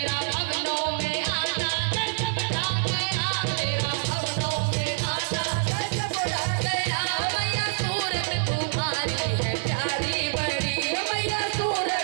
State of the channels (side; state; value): left; silent; 61 dB below the other